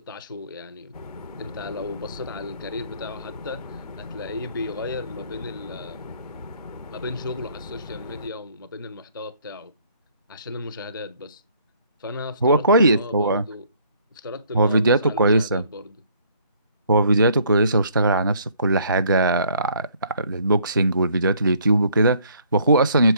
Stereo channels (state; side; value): inverted; both; correlation -0.62